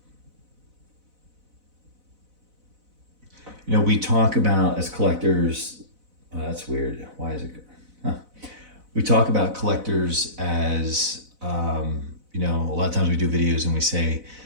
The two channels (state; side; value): late; left; 4.0 ms